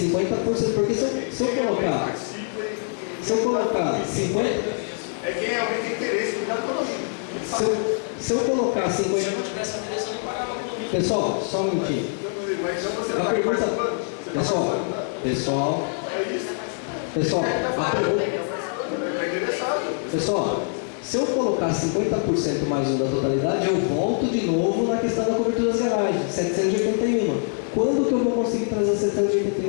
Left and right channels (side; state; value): right; silent; 58 dB below the other